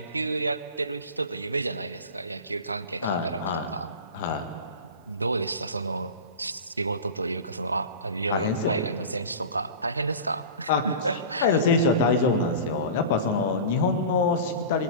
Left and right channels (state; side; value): inverted; both; correlation -0.32